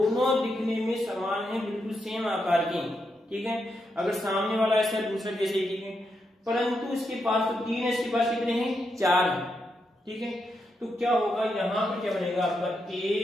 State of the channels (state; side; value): normal; both; correlation 0.83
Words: दिखने में समान है, बिल्कुल सेम आकार के, ठीक है। अगर सामने वाला ऐसा है, दूसरा जैसे ही, ठीक है, परंतु इसके पास तो 3 है, इसके पास कितने हैं 4 है, ठीक है। तो क्या होगा, यहाँ पर क्या बनेगा आपका